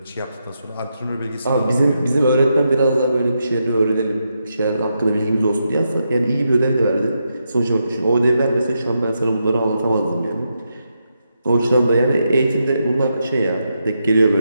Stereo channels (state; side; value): inverted; both; correlation -0.84